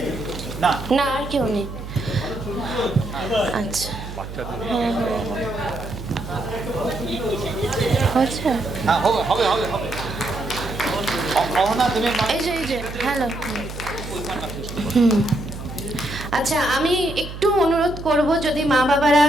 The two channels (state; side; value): noise; right; hum, 10 dB below the sound